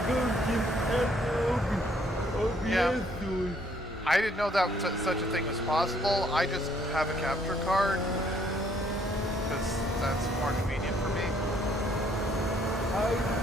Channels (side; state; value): both; normal; correlation 0.66